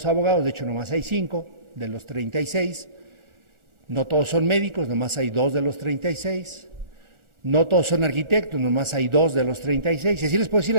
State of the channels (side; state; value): left; late; 1.4 ms